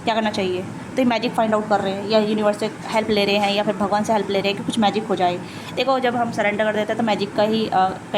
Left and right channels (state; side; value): identical; both; correlation 1.00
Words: क्या करना चाहिए। तो ये मैजिक फाइंड आउट कर रहे हैं, या यूनिवर्स से हेल्प ले रहे हैं, या फिर भगवान से हेल्प ले रहे हैं कि कुछ मैजिक हो जाए। देखो, जब हम सरेंडर कर देते हैं तो मैजिक का ही